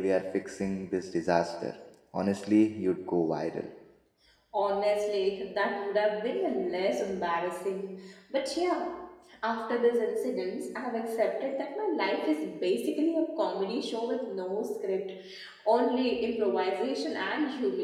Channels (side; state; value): both; identical; correlation 1.00